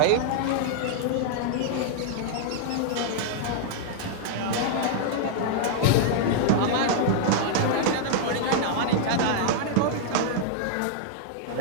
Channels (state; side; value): different; both; correlation -0.01